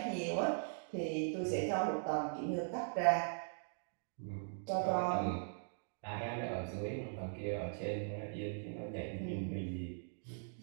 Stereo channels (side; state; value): left; silent; digital silence